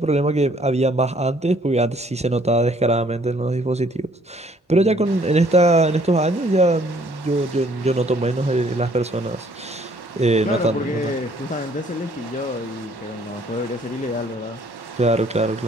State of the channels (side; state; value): both; normal; correlation 0.62